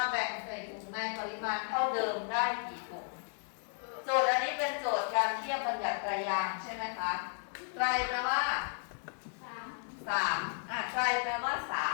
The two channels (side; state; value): right; silent; 55 dB below the other